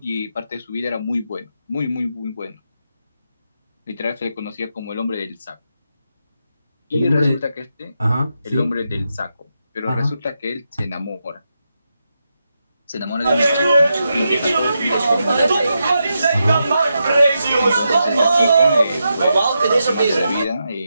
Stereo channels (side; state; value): both; inverted; correlation -0.86